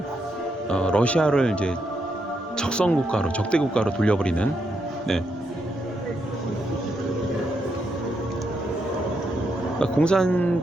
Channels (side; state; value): both; normal; correlation 0.80